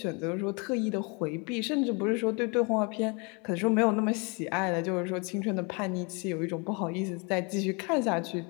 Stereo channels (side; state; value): right; quieter; 32.0 dB